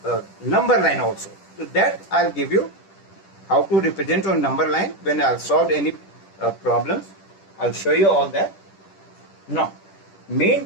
number line also. So that I'll give you how to represent on number line when I'll solve any problems. I'll show you all that. Now, main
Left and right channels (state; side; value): late; right; 10 ms